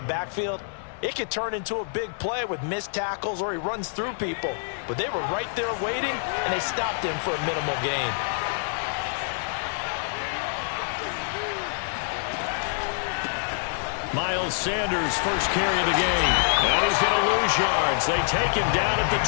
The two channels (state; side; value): silent; right; digital silence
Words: the backfield, it could turn into a big play with missed tackles or he runs through people. But they were right there waiting, and they stopped him for a minimal gain. Miles Sanders, first carry of the game. And he's going to lose yards. They take him down at the